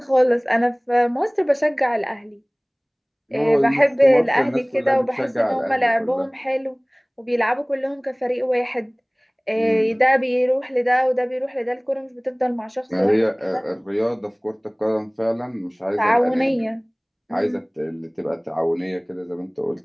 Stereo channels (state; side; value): identical; both; correlation 1.00